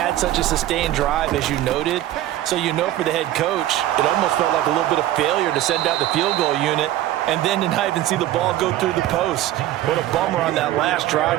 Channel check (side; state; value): left; quieter; 13.8 dB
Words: such a sustained drive, as you noted. So you know for the head coach, it almost felt like a little bit of failure to send out the field goal unit and then to not even see the ball go through the post. What a bummer on that last